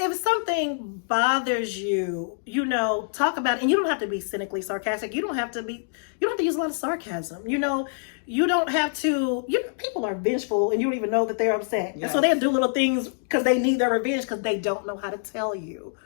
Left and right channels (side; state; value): right; silent; digital silence